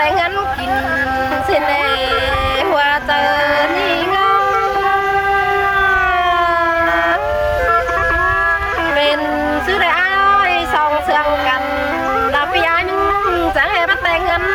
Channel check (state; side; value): identical; both; correlation 1.00